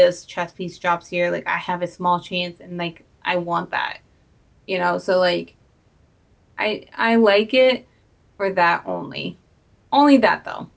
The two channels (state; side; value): identical; both; correlation 1.00